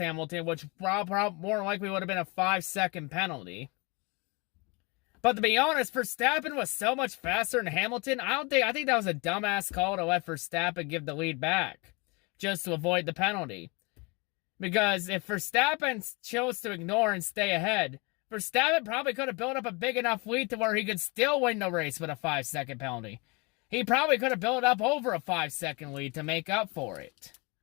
which more likely would have been a 5-second penalty. But to be honest, Verstappen was so much faster than Hamilton. I think that was a dumbass call to let Verstappen give the lead back just to avoid the penalty. Because if Verstappen chose to ignore and stay ahead, Verstappen probably could have built up a big enough lead to where he could still win the race with a 5-second penalty. He probably could have built up over a 5-second lead to make up for it.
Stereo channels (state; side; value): quieter; right; 28.7 dB